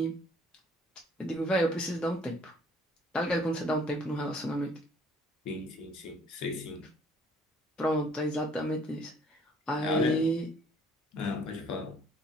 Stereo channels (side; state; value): both; normal; correlation 0.59